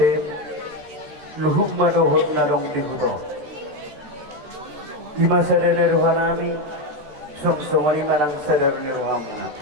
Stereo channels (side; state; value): left; late; 13 ms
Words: luhuk madohot nadong dibuto di masa dari rohanami sok somani manang sadar ni rohamuna